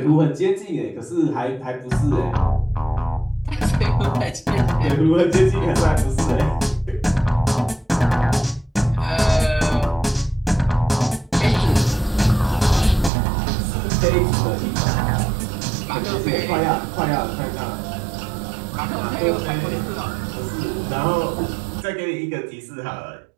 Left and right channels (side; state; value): left; drops out; at 13.1 s